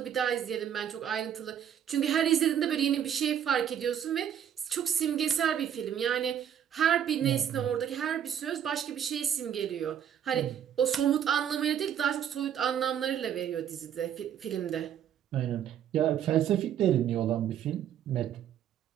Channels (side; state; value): left; quieter; 9.4 dB